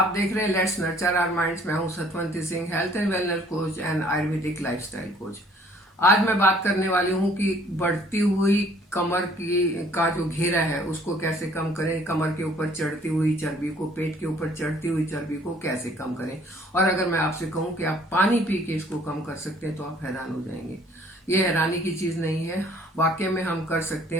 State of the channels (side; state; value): both; normal; correlation 0.58